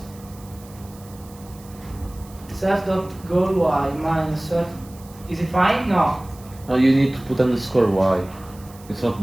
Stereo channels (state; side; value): noise; right; hiss, 23 dB below the sound